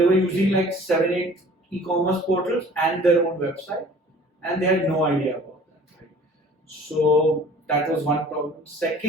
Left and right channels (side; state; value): both; normal; correlation 0.48